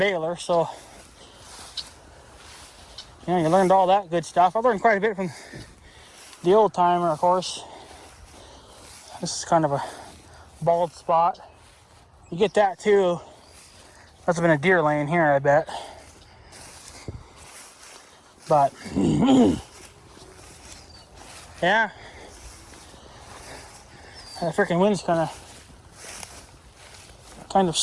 So, you learned all that good stuff. I learned quite a bit from the old timer, of course. This is kind of a bald spot. You get that too. Must have been a deer laying here, I bet. But yeah, the freaking wind's kind of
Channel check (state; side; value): identical; both; correlation 1.00